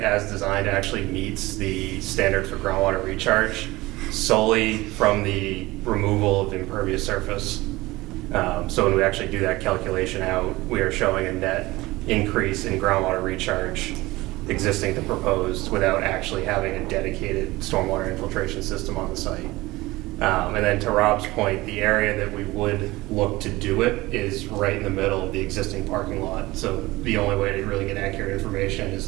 as designed actually meets the standard for groundwater recharge solely from the removal of impervious surface. So when we actually do that calculation out, we are showing a net increase in groundwater recharge existing to proposed without actually having a dedicated stormwater infiltration system on the site. And then to Rob's point, the area that we would look to do it is right in the middle of the existing parking lot. So the only way to really get accurate information is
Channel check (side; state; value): left; quieter; 19.9 dB